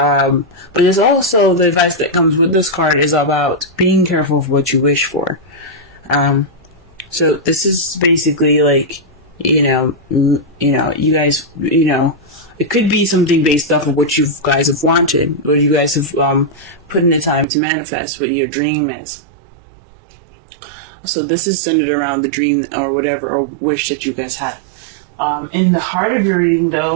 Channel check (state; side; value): drops out; left; at 17.4 s